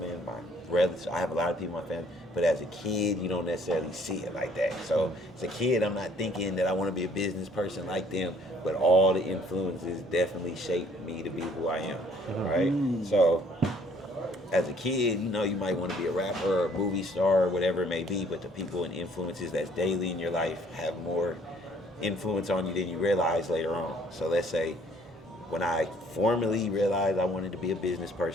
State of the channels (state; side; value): normal; both; correlation 0.60